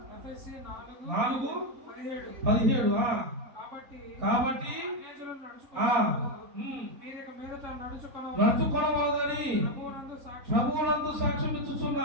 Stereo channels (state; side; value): late; left; 3.8 ms